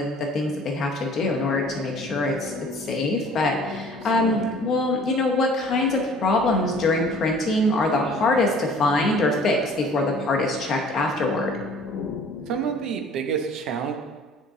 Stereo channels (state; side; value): normal; both; correlation 0.50